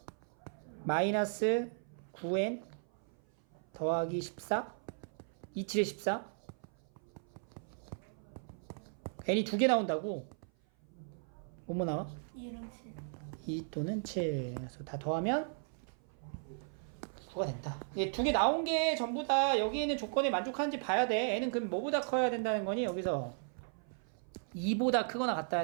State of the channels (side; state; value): left; silent; 54 dB below the other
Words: 마이너스 9n 더하기 14 27에 14 n이 두 개 나온다고? 뭐뭐 나와? 2랑 7. 2 또는 7 그래서 다 더하면 9가 된다. 이게 두 개 나온 게 전부 다 여기 있는 조건에 만족하는지 봐야 돼. n은 그럼 뭐보다 커야 된다는 거니? 여기서 2보다 크거나 같아야